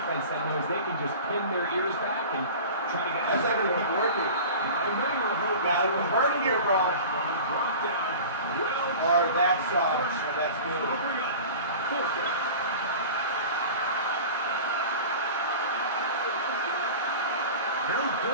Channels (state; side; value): inverted; both; correlation -0.37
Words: that knows they can just pin their ears back and try to get. That's not going to keep working. Got to convert here, bro. Or that's good. He'll